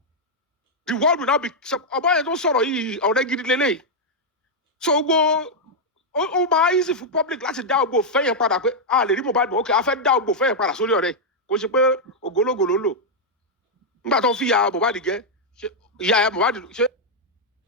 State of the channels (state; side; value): normal; both; correlation -0.03